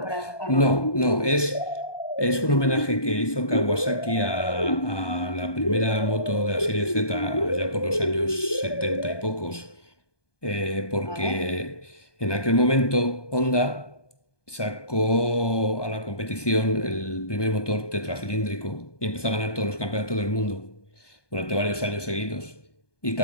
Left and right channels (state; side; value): late; right; 1.2 ms